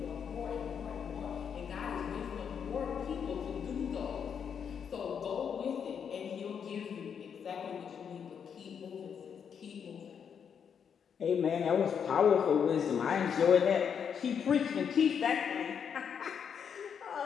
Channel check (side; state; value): right; quieter; 7.4 dB